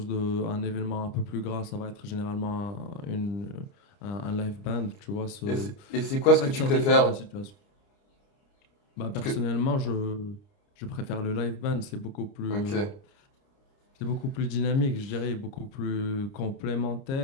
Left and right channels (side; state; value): right; late; 29 ms